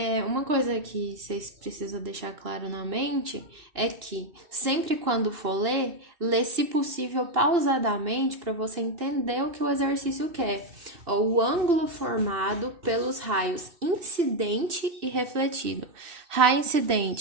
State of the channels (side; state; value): left; late; 2.6 ms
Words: Uma coisa que vocês precisam deixar claro na mente é que sempre quando for ler, lê se possível pausadamente para você entender o que o exercício quer. O ângulo formado pelos raios incidente e refletido. Raio